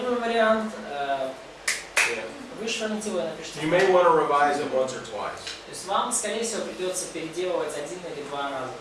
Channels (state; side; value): identical; both; correlation 1.00